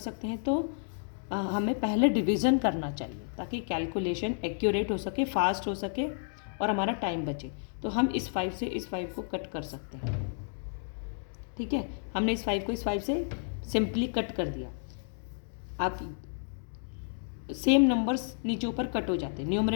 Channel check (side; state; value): right; silent; digital silence